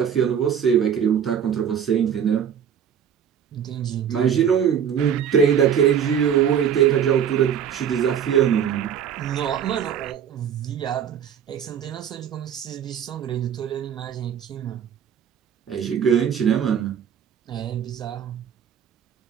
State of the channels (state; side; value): quieter; left; 8.4 dB